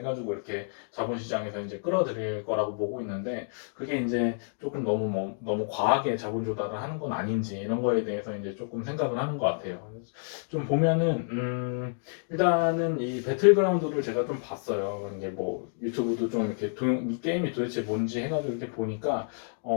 이렇게 자본시장에서 이제 끌어들일 거라고 보고 있는데 그게 이제 조금 너무 과하게 자본 조달을 하는 건 아닌지 이런 거에 대해서 이제 조금 생각을 하는 것 같아요. 좀 보면은 일단은 이 배틀그라운드를 제가 좀 봤어요. 이게 뭐 유튜브도 좀 이렇게 이 게임이 도대체 뭔지 해가지고 이렇게 보니까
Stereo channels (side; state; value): right; silent; digital silence